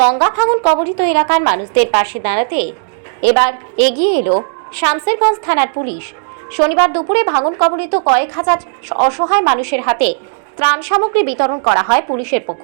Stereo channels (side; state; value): left; silent; 70 dB below the other